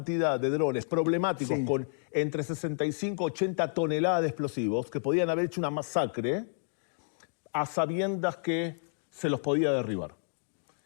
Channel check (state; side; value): silent; right; digital silence